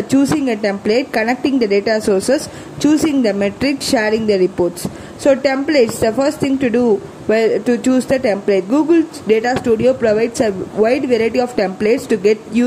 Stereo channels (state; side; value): identical; both; correlation 1.00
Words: choosing a template, connecting the data sources, choosing the metrics, sharing the reports. So templates, the first thing to do to choose the template. Google Data Studio provides a wide variety of templates to get